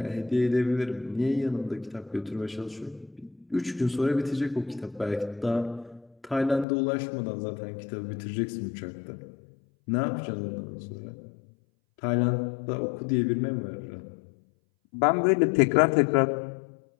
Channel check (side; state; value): right; drops out; at 6.7 s